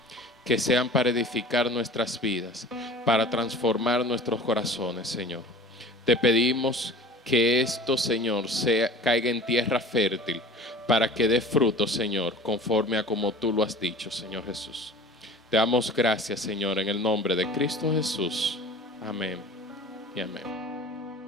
Que sean para edificar nuestras vidas, para transformar nuestros corazones, Señor. Te pedimos que esto, Señor, caiga en tierra fértil, para que dé fruto, Señor, conforme a como tú lo has dicho, Señor Jesús. Te damos gracias, Señor, en el nombre de Cristo Jesús. Amén y amén.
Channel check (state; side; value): normal; both; correlation 0.42